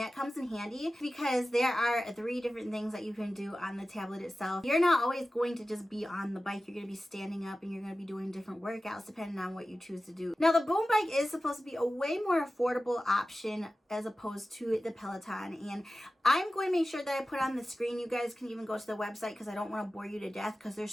comes in handy because there are 3 different things that you can do on the tablet itself. You're not always going to just be on the bike. You're going to be standing up and you're going to be doing different workouts depending on what you choose to do. Now, the boom bike is supposed to be a way more affordable option as opposed to the Peloton, and I'm going to make sure that I put on the screen. You guys can even go to the website because I don't want to bore you to death because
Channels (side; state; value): both; normal; correlation 0.95